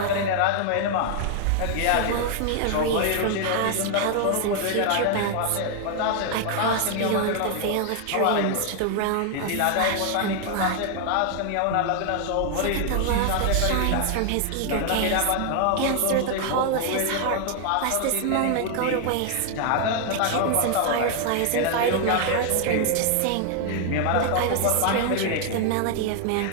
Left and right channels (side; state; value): both; different; correlation 0.00